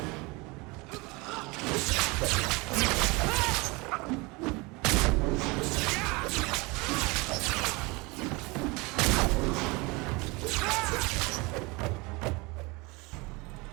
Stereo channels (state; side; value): quieter; left; 26.0 dB